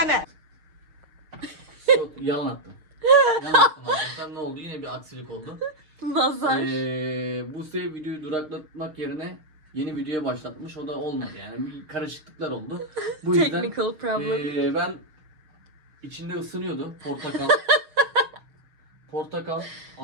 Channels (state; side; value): late; left; 6.5 ms